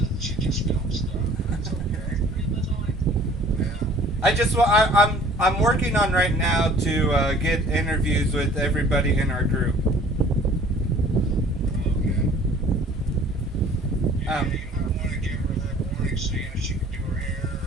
She just films stuff. That's okay. Yeah. I'm working on right now to get interviews with everybody in our group. Okay. Yeah, you might want to give her that warning, seeing if she can do her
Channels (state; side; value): normal; both; correlation 0.52